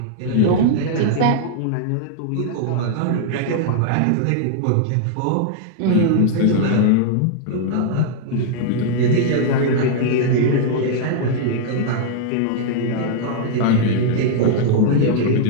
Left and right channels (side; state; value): both; different; correlation -0.01